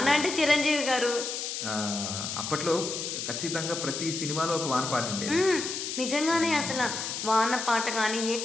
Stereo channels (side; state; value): left; noise; hiss, 4 dB below the sound